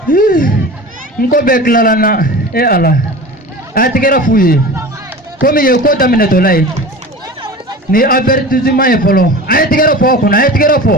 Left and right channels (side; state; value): both; normal; correlation 0.35